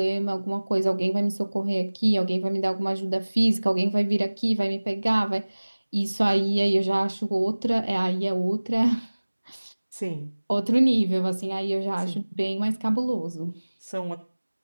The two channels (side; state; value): both; inverted; correlation -1.00